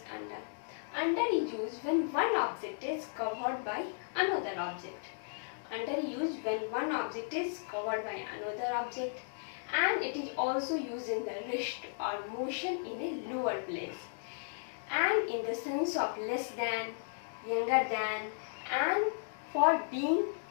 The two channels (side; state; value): right; silent; digital silence